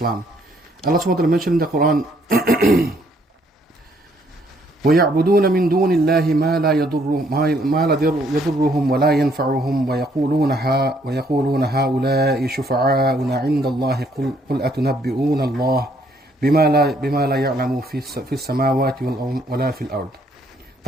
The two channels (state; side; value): normal; both; correlation 0.67